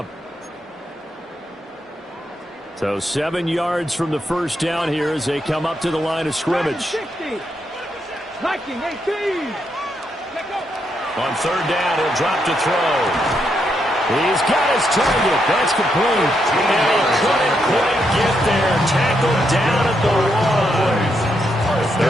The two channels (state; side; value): normal; both; correlation 0.79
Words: So 7 yards from the first down here as they come up to the line of scrimmage. 19, 18. On third down, he'll drop to throw. He's got his target. That's complete. And he couldn't quite get there. Tackled down at the 1.